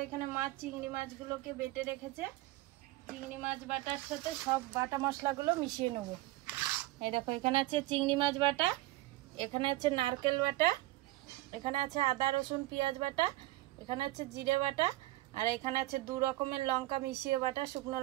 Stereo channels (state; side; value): quieter; left; 18.0 dB